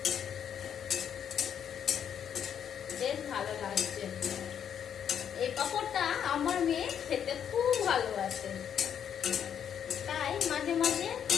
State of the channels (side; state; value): right; quieter; 8.6 dB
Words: বেশ ভালো লাগছে। এই পাঁপড়টা আমার মেয়ে খেতে খুব ভালোবাসে, তাই মাঝে মাঝে